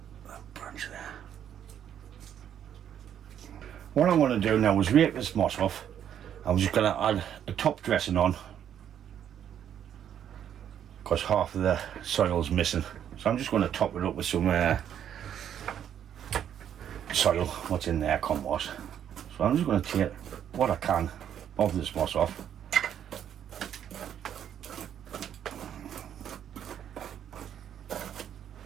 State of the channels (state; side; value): quieter; left; 9.5 dB